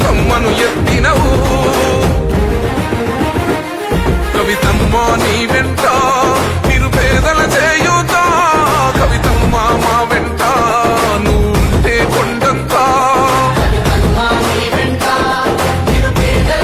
ఎత్తినవు, కవితమ్మా నీవే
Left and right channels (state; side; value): identical; both; correlation 1.00